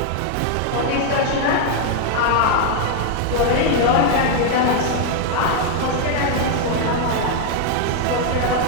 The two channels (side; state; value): both; different; correlation 0.00